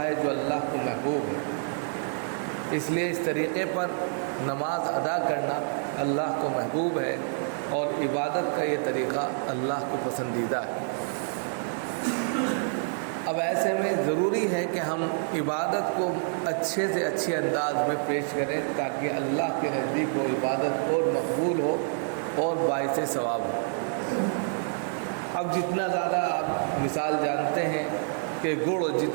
جو اللہ کو محبوب ہے۔ اس لیے اس طریقے پر نماز ادا کرنا اللہ کو محبوب ہے اور عبادت کا یہ طریقہ اللہ کو پسندیدہ ہے۔ اب ایسے میں ضروری ہے کہ ہم عبادت کو اچھے سے اچھے انداز میں پیش کریں تاکہ اللہ کے نزدیک وہ عبادت اور مقبول ہو اور باعث ثواب ہو۔ اب جتنا زیادہ آپ مثال جانتے ہیں کہ گڑ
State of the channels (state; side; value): silent; left; 60 dB below the other